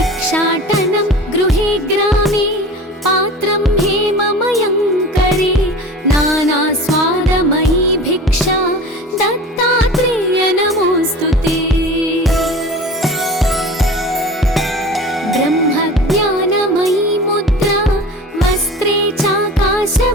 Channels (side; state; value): both; normal; correlation 0.37